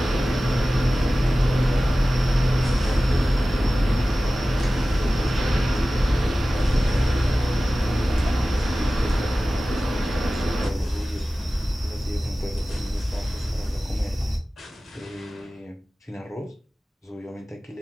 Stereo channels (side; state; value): both; normal; correlation 0.96